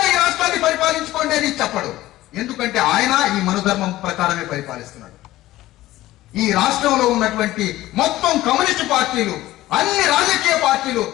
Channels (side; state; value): right; quieter; 16.1 dB